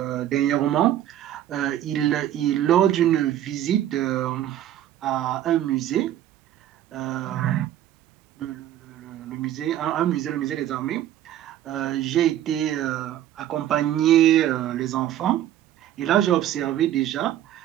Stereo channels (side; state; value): left; quieter; 12.1 dB